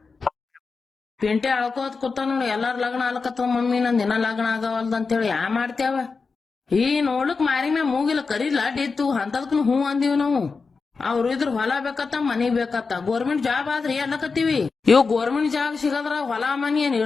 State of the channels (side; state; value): right; quieter; 4.6 dB